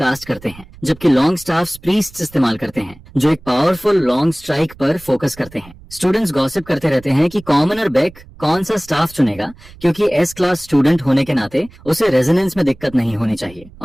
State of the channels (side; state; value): right; noise; rumble, 22 dB below the sound